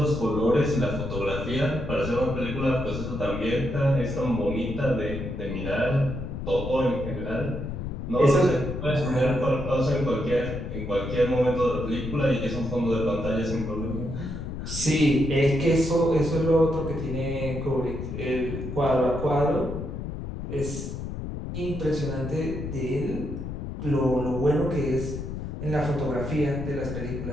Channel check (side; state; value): left; noise; rumble, 6 dB below the sound